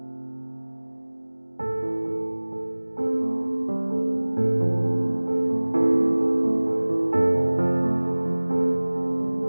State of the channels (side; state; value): both; inverted; correlation -1.00